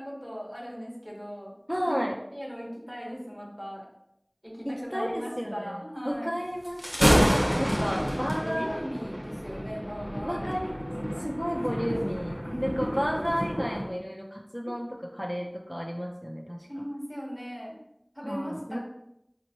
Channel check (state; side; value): identical; both; correlation 1.00